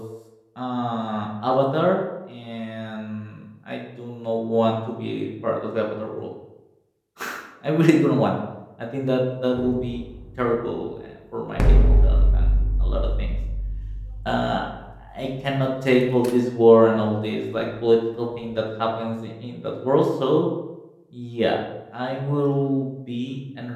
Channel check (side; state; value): both; identical; correlation 1.00